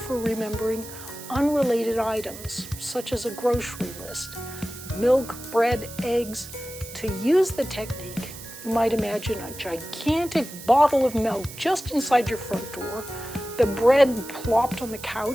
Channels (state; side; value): noise; right; hiss, 14 dB below the sound